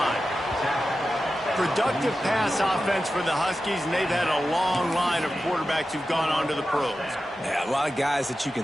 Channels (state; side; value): normal; both; correlation 0.92